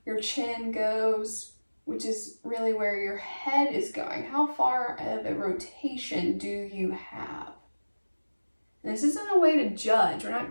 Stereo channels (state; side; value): inverted; both; correlation -1.00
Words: your chin goes, which is really where your head is going. How far of a rotation do you have? And this isn't a way to judge. We're